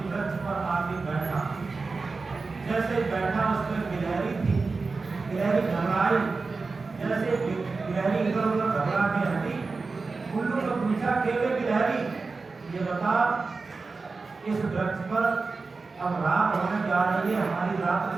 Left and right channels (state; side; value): quieter; left; 4.1 dB